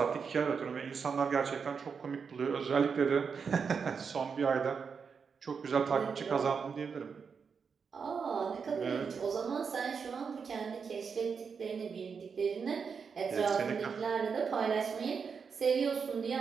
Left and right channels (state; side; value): quieter; left; 5.9 dB